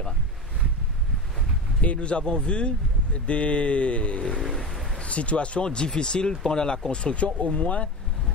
Et nous avons vu des situations difficiles pendant la construction. Au moins,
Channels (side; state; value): both; normal; correlation 0.25